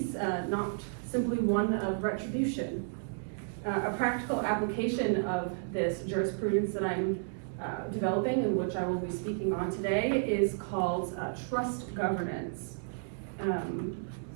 not simply one of retribution. A practical application of this jurisprudence that I'm developing, and which I will be speaking on today, is called trust governance.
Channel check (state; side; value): silent; left; digital silence